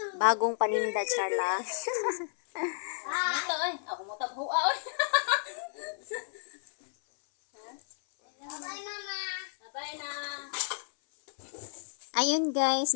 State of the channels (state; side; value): silent; right; 57 dB below the other